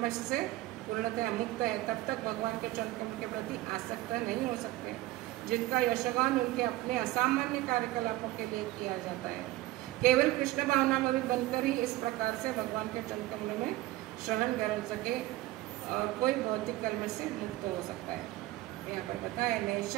से पूर्णतः मुक्त है। तब तक भगवान के चरण कमल के प्रति आसक्त नहीं हो सकते, जिनका यशगान उनके अपने असामान्य कार्यकलापों के लिए किया जाता है। केवल कृष्ण भावना में भी बनकर ही इस प्रकार से भगवान के चरण कमलों में शरण कर सके और कोई भौतिक कलमश से मुक्त हो सकता है। यहाँ पर बताया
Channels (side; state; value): left; quieter; 17.2 dB